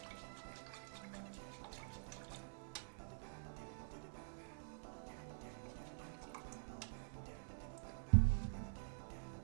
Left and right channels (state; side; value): silent; left; digital silence